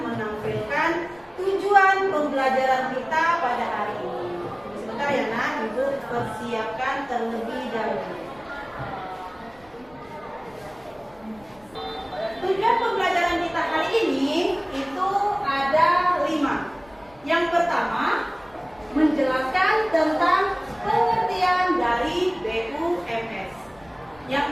menampilkan tujuan pembelajaran kita pada hari ini. Sebentar ya nak, Ibu persiapkan terlebih dahulu. Tujuan pembelajaran kita hari ini itu ada 5. Yang pertama, menjelaskan tentang pengertian dari BUMS. Yang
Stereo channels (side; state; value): left; noise; rumble, 28 dB below the sound